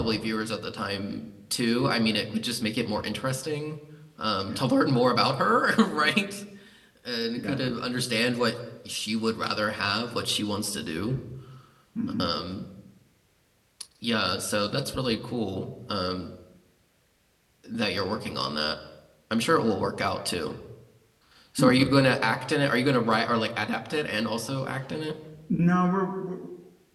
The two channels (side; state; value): both; identical; correlation 1.00